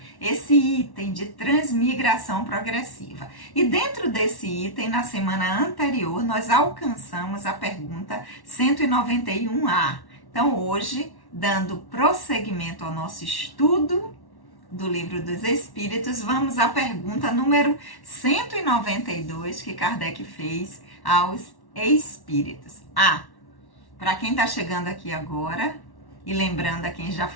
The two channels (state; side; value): late; right; 1.1 ms